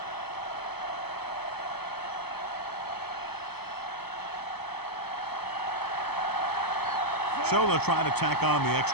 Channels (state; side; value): late; right; 0.97 ms